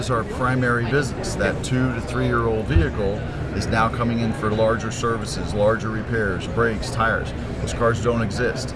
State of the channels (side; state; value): both; identical; correlation 1.00